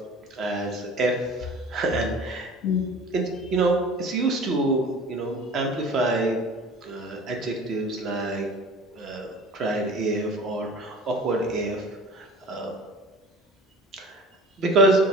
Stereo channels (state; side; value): normal; both; correlation 0.42